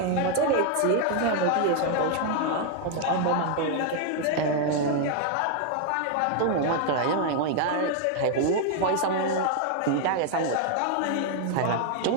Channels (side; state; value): both; different; correlation 0.00